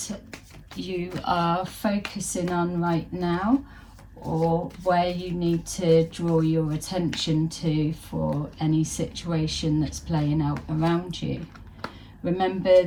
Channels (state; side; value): identical; both; correlation 1.00